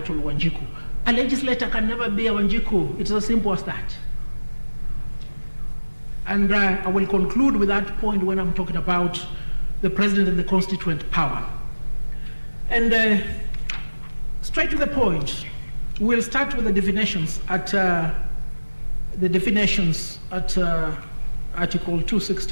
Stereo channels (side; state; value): both; inverted; correlation -1.00